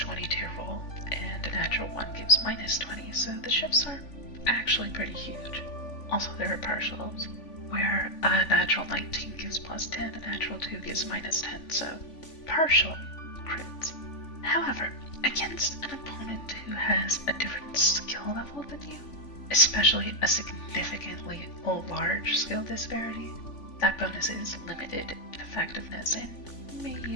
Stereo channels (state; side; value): late; right; 3.5 ms